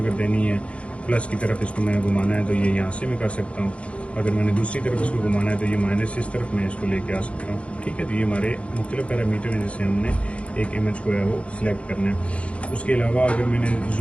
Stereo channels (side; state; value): right; late; 0.061 ms